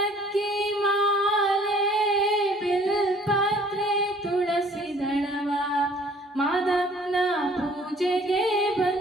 ಮಾಲೆ ಬಿಲ್ಪತ್ರೆ ತುಳಸಿ ದಳವ ಮಾದಪ್ಪನ ಪೂಜೆಗೆ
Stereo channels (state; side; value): normal; both; correlation 0.55